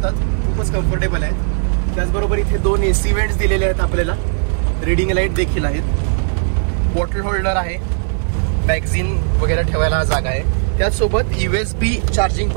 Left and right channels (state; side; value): silent; left; 59 dB below the other